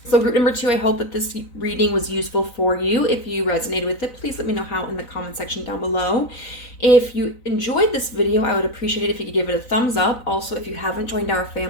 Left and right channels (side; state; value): right; late; 4.0 ms